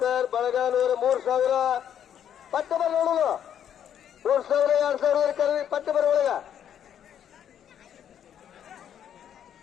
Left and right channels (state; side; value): quieter; right; 9.4 dB